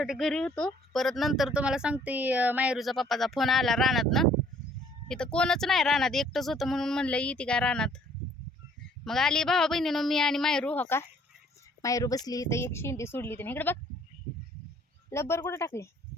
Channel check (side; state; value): both; normal; correlation 0.60